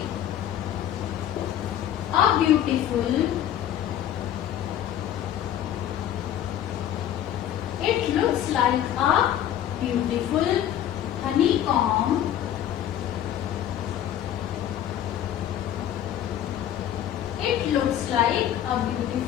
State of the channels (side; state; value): right; quieter; 10.9 dB